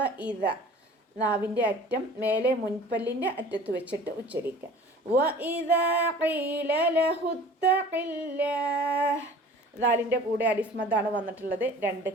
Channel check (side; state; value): both; normal; correlation 0.45